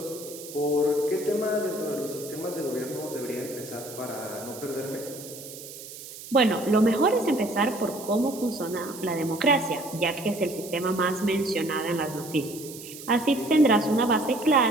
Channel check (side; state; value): right; noise; hiss, 14 dB below the sound